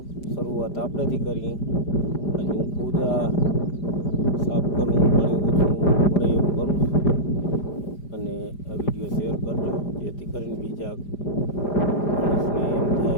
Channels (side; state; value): right; late; 5.0 ms